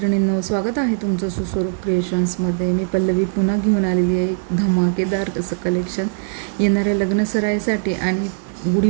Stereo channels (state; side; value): silent; left; digital silence